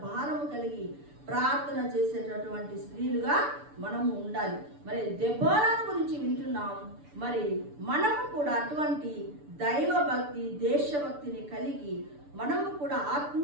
భారము కలిగి ప్రార్థన చేసేటటువంటి స్త్రీలుగా మనము ఉండాలి. మరి దెబోరా గురించి వింటున్నాం. మరి మనము కూడా అటువంటి దైవభక్తి, దేశభక్తిని కలిగి మనము కూడా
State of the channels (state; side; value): late; left; 6.9 ms